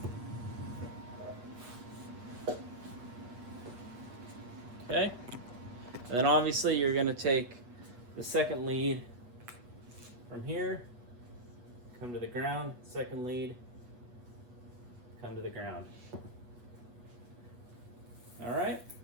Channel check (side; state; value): left; late; 8.2 ms